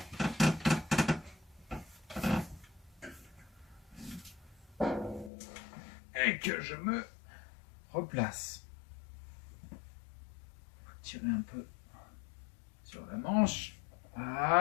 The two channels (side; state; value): right; drops out; at 5.3 s